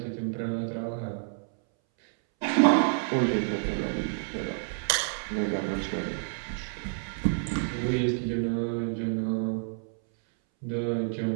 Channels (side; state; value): left; silent; 59 dB below the other